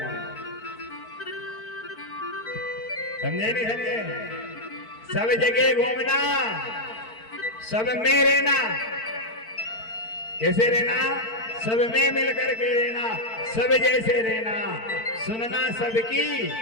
समझे नहीं समझे? सब जगह घूमना, सब में रहना। कैसे रहना? सब में मिल करके रहना, सब जैसे रहना, सुनना सबकी,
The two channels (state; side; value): late; right; 4.5 ms